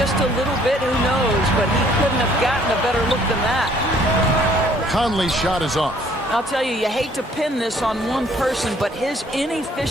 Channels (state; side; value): normal; both; correlation 0.61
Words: a little bit, who knows, but he couldn't have gotten a better look than that. Conley's shot is off. I'll tell you, you hate to pin this on one person, but his